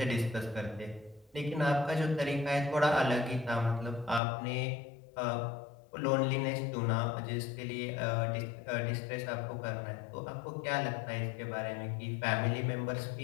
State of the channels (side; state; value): right; drops out; at 4.2 s